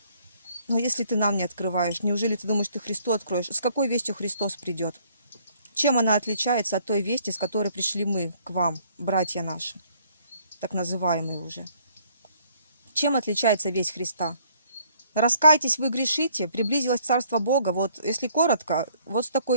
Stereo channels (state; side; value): inverted; both; correlation -0.63